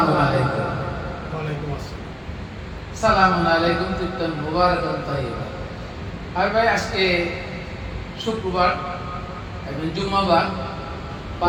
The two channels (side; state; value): both; identical; correlation 1.00